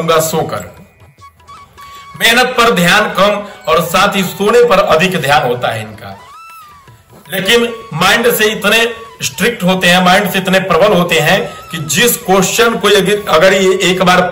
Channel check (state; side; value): identical; both; correlation 1.00